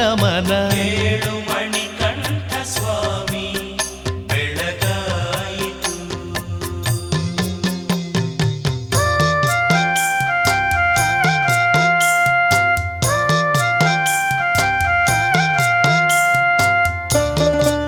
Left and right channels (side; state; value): both; identical; correlation 1.00